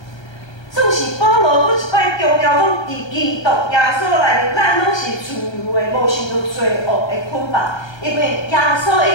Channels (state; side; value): late; right; 1.3 ms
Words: 总是保罗搁一摆强调讲，伫基督耶稣内面，咱拢是自由的，无受到罪恶的捆绑。因为耶稣